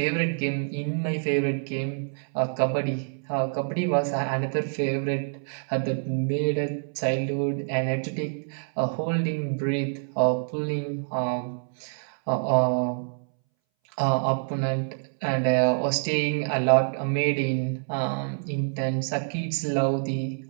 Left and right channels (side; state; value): left; silent; 60 dB below the other